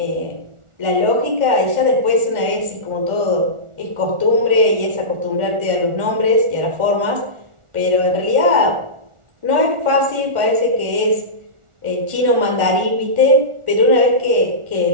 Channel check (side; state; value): left; late; 1.4 ms